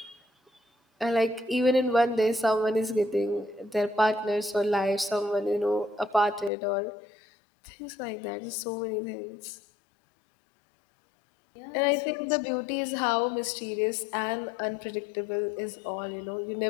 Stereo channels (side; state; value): right; drops out; at 6.5 s